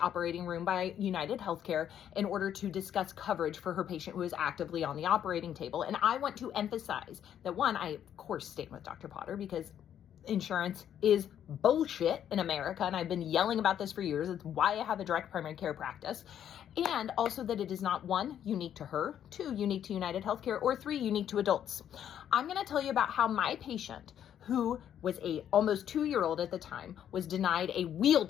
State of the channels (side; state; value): right; quieter; 9.9 dB